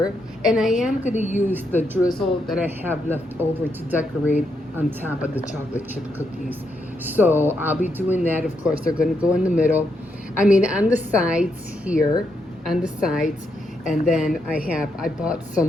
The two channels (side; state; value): both; normal; correlation 0.80